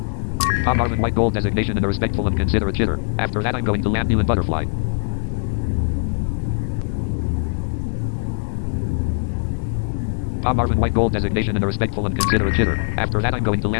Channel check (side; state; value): right; silent; digital silence